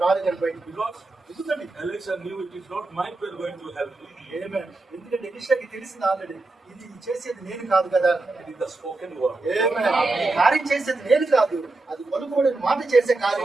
రాలేదని బయటకు. Because ఎందుకండి? Elisha knew it is not my prayer going to help me. ఆమేన్. ఎందుకంటే ఎలీషాకి తెలిసింది ఆల్రెడీ, ఇది చేసేది నేను కాదు కదా. It is the spoken word. ఆమేన్. ఈ కార్యం చేసేది నేను కాదు, అది పలుకుబడిన మాట చేసే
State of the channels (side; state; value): left; quieter; 3.2 dB